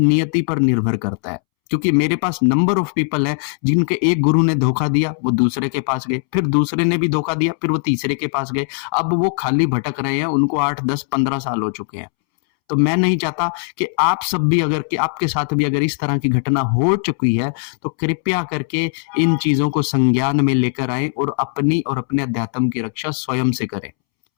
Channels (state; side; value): silent; right; 67 dB below the other